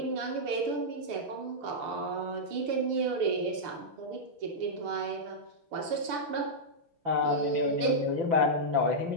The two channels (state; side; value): late; left; 6.7 ms